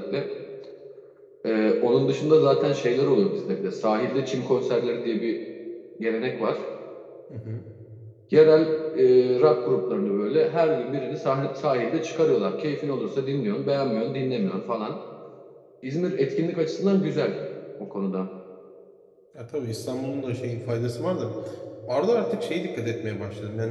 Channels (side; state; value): both; identical; correlation 1.00